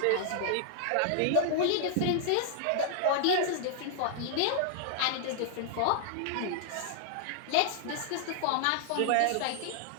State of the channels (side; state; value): both; different; correlation -0.01